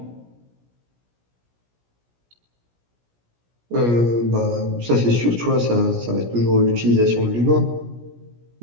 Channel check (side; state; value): left; late; 17 ms